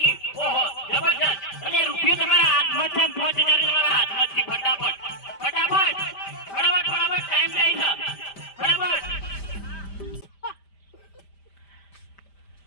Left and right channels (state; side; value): late; right; 5.0 ms